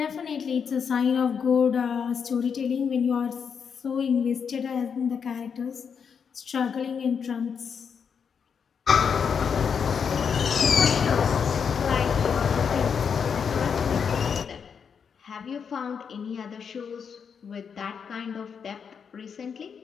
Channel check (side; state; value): right; quieter; 6.7 dB